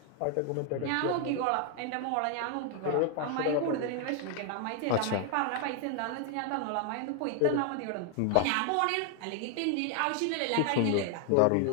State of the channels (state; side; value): different; both; correlation 0.00